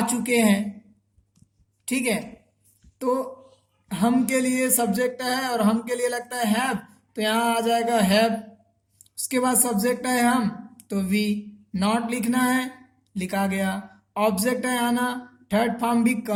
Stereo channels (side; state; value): both; identical; correlation 1.00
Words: चुके हैं, ठीक है। तो हम के लिए सब्जेक्ट है और हम के लिए लगता है हैव, तो यहाँ आ जाएगा हैव। उसके बाद सब्जेक्ट है हम, तो वी, नॉट लिखना है, लिखा गया। ऑब्जेक्ट है आना, थर्ड फॉर्म भी